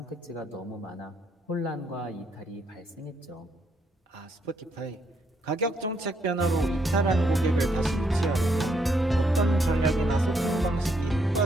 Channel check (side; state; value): both; normal; correlation 0.74